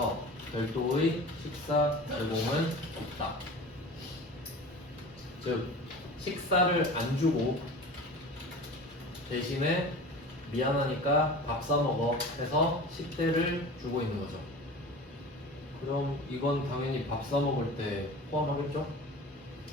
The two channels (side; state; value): both; normal; correlation 0.36